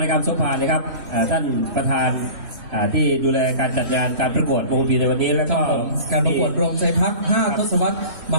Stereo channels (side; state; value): left; late; 2.6 ms